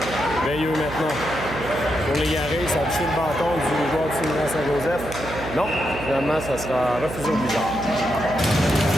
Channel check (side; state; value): right; noise; hum, 10 dB below the sound